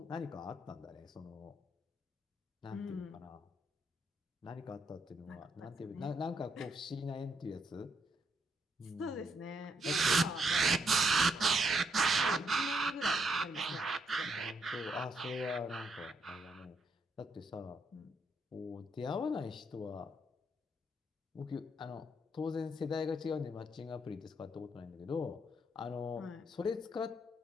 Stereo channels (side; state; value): both; normal; correlation 0.76